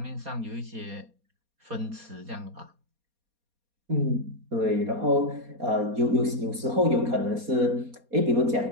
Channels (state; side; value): late; left; 4.2 ms